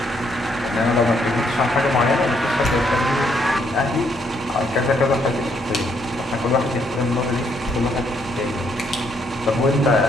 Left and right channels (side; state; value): both; normal; correlation 0.72